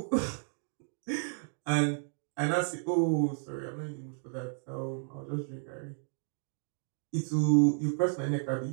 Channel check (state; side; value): silent; left; 56 dB below the other